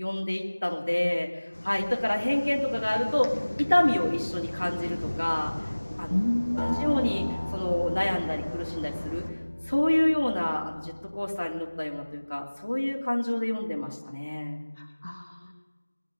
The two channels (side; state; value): both; inverted; correlation -1.00